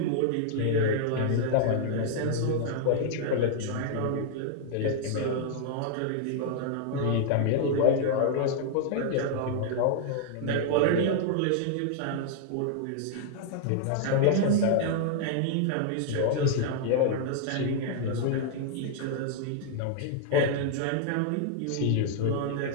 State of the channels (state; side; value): different; both; correlation -0.01